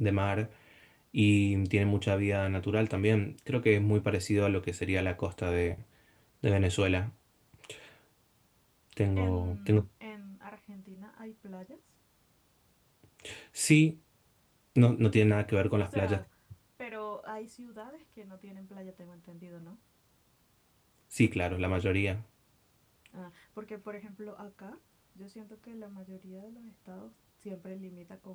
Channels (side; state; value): both; identical; correlation 1.00